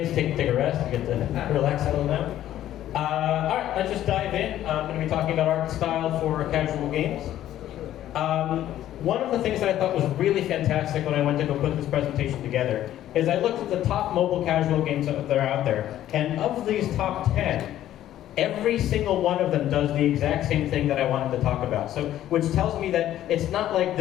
take a rest. You get to relax a little now. All right, let's just dive in. I'm going to be talking about art style for casual games. One of the things that I thought was really fantastic when I went to go put this presentation together is I looked at the top mobile casual games that are out there, and of these top 10, every single one of them does the exact same thing that I wanted to talk about. So, which tells me that it's not like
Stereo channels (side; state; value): right; quieter; 12.5 dB